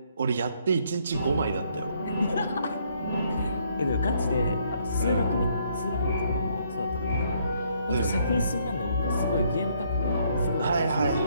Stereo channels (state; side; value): inverted; both; correlation -0.69